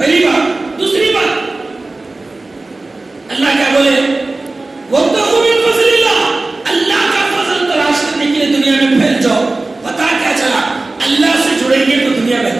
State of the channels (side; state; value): left; quieter; 3.2 dB